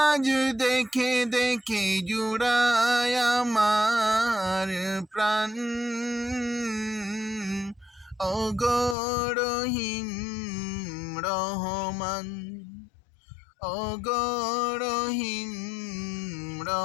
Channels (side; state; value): right; drops out; at 9.0 s